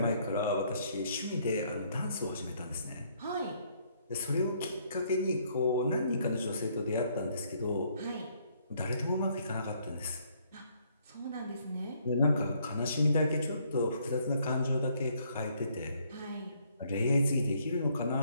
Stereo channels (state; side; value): inverted; both; correlation -0.68